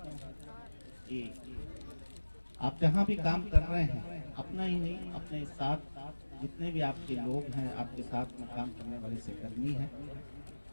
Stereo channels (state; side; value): inverted; both; correlation -1.00